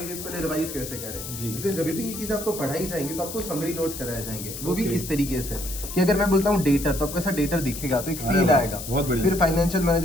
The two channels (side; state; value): left; noise; hiss, 9 dB below the sound